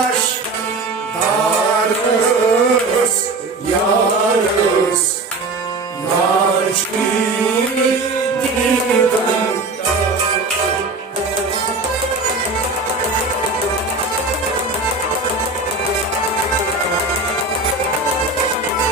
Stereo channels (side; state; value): left; quieter; 3.4 dB